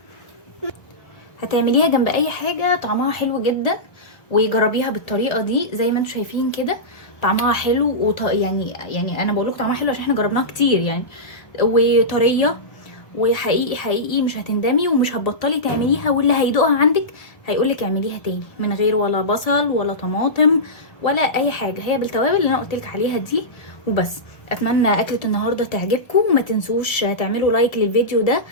هتعمليها جنب اي حاجه طعمها حلو جدا، وجربيها بالطريقه دي زي ما انتم شايفين كده. طعمها حلو يعني انا بقول لكم طعمها حلو عشان احنا جربناها كتير يعني، وطريه. وحقيقي حقيقي مش هتندمي ومش هتبطلي تعمليها، واللي هيدوقها عندك هيقولك اعمليها تاني من غير ولا بصل ولا طماطم ولا اي حاجه، هي بالتوابل اللي انا قلتلك عليها دي وبس. اتمنى اكله النهارده تعجبكم، وما تنسوش تعملوا لايك للفيديو ده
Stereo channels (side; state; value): right; late; 1.3 ms